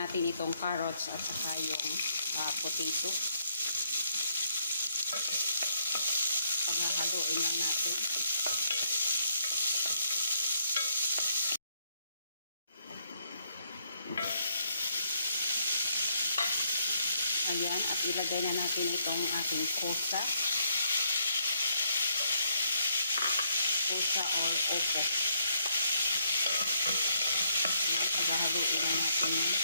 itong carrots at saka yung potato. Paghahaluin lang natin. Ayan, at ilagay na natin itong ating kosa. Kosa or opo. Ayan, paghahaluin lang natin.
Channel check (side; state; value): both; inverted; correlation -0.73